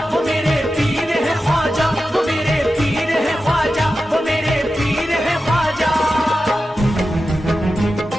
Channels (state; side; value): normal; both; correlation 0.92